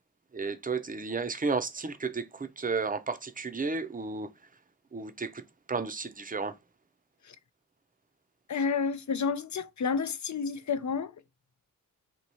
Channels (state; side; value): normal; both; correlation 0.10